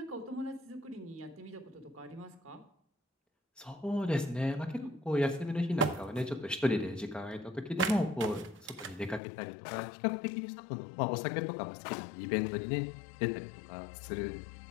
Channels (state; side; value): drops out; right; at 9.2 s